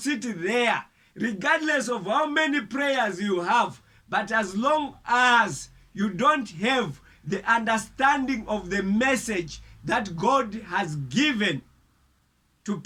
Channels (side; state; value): both; identical; correlation 1.00